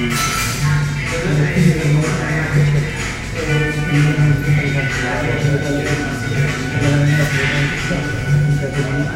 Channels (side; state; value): both; identical; correlation 1.00